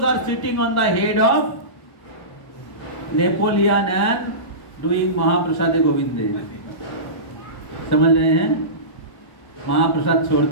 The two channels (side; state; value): right; late; 1.1 ms